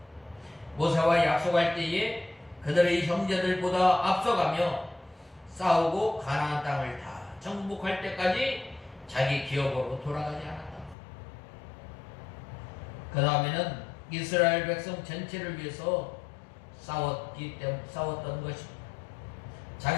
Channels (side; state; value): right; drops out; at 11.0 s